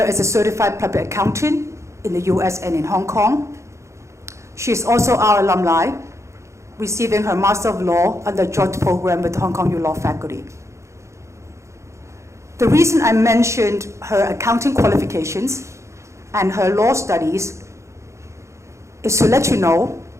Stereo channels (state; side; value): late; left; 0.14 ms